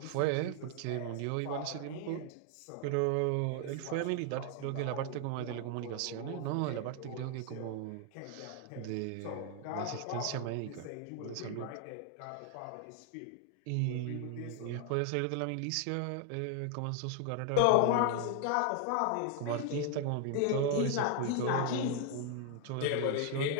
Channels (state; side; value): different; both; correlation 0.00